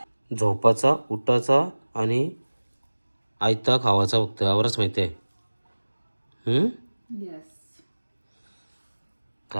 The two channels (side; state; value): both; inverted; correlation -1.00